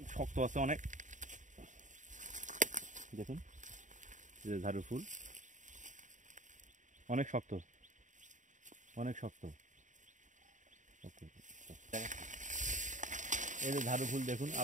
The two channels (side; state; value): left; late; 0.36 ms